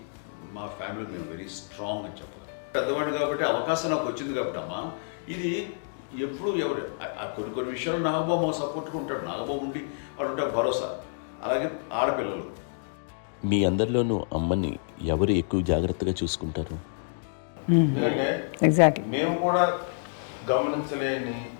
మా ఫ్యామిలీ మేము వెరీ స్ట్రాంగ్ అని చెప్పాలి. పెద్దవాడు కాబట్టి అవకాశం నాకు వచ్చింది కాబట్టి అమ్మ, ఇది ఎప్పుడు ఎవరు కొన్ని విషయాలు నాగబాబు సపోర్ట్గా ఉంటాడు. నాగబాబు ఉండి వాడు ఉంటాడు భరోసా. అలాగే ఆడపిల్లలు. మీ అందరిలోనూ అమ్మని ఎవరు ఎక్కువ జాగ్రత్తగా చూసుకుంటారు? ఎందుకంటే ఎగ్జాక్ట్లీ. మేము కూడా గమనించలేని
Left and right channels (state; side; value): silent; right; digital silence